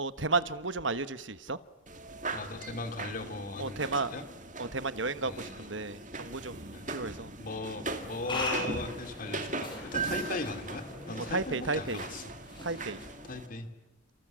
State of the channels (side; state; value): both; normal; correlation -0.12